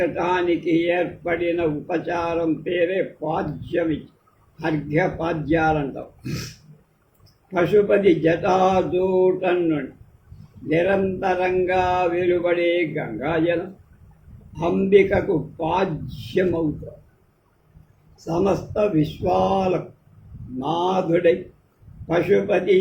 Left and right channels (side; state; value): both; identical; correlation 1.00